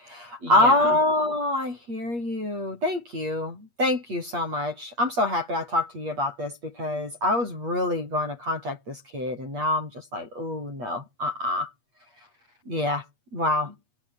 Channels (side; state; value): left; late; 8.4 ms